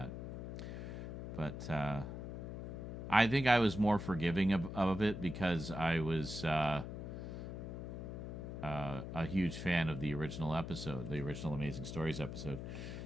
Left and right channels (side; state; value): left; noise; hum, 7 dB below the sound